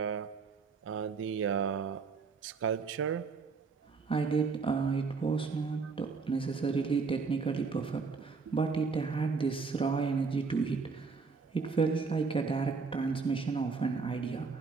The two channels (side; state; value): left; quieter; 4.8 dB